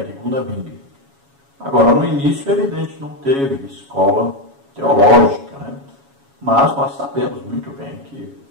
e Gunnar Wingre. Agora, no início, é evidente, não teve escola teológica, né? Mas nós sabemos muito bem que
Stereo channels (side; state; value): left; late; 7.2 ms